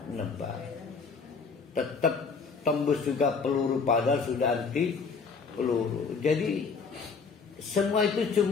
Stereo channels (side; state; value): right; quieter; 5.1 dB